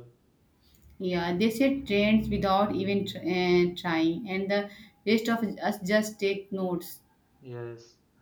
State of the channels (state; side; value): identical; both; correlation 1.00